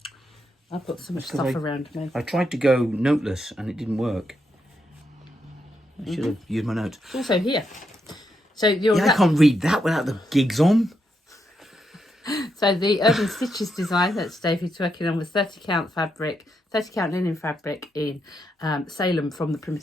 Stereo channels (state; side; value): normal; both; correlation 0.81